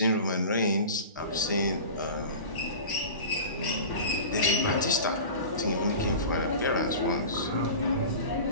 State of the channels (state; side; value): inverted; both; correlation -0.35